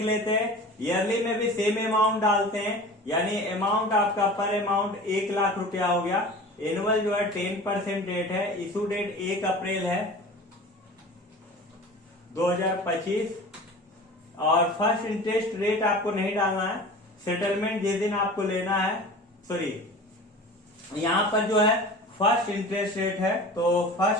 लेते हैं। ईयरली में भी सेम अमाउंट डालते हैं, यानी अमाउंट आपका पर अमाउंट 1 लाख रुपया हो गया। एनुअल जो है 10% रेट है, इशू डेट 1 अप्रैल है 2025 और फर्स्ट इंटरेस्ट रेट आपको नहीं डालना है। सेटलमेंट जिस दिन आपको लेना है, सॉरी यहाँ पर जो है फर्स्ट इंटरेस्ट रेट है तो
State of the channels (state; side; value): normal; both; correlation 0.38